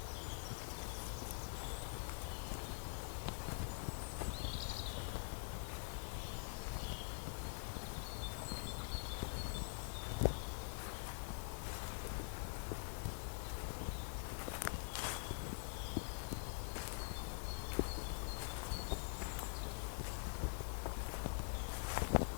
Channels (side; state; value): right; silent; digital silence